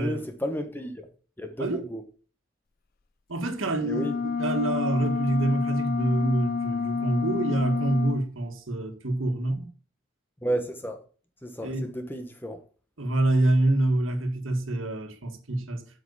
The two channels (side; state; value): both; normal; correlation 0.74